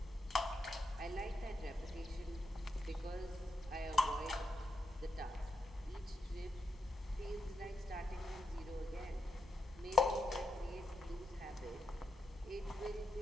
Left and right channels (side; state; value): both; normal; correlation 0.83